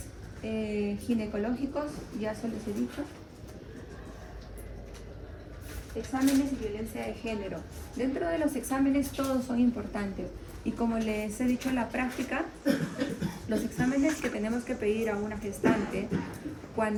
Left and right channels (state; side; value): identical; both; correlation 1.00